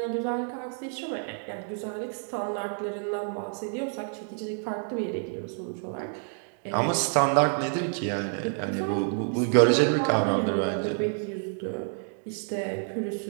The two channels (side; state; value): left; silent; 57 dB below the other